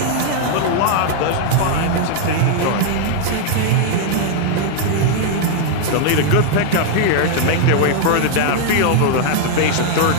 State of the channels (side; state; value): both; different; correlation 0.00